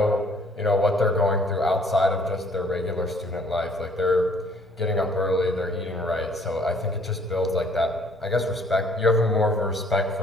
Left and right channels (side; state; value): both; normal; correlation 0.60